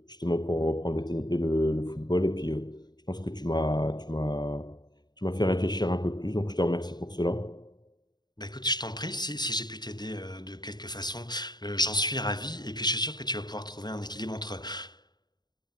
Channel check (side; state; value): right; late; 0.20 ms